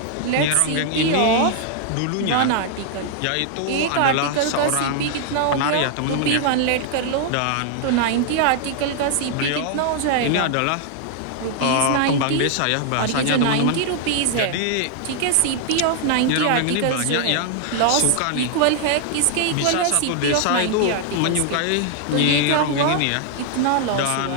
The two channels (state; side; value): different; both; correlation 0.00